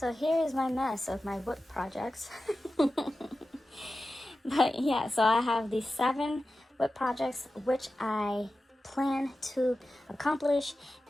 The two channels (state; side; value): normal; both; correlation 0.94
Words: here is my mess of my whip projects. But yeah, so I have these 7 whip projects, which I plan to accomplish